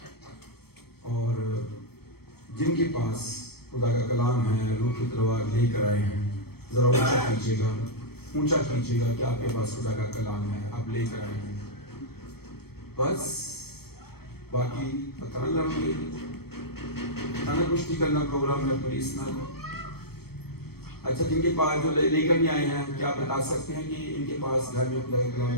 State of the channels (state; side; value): late; right; 0.96 ms